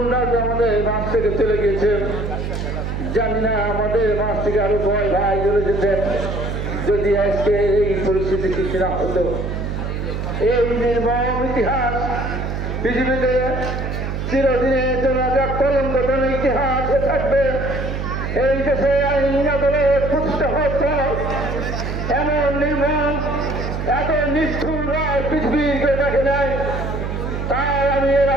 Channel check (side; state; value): right; noise; hum, 3 dB below the sound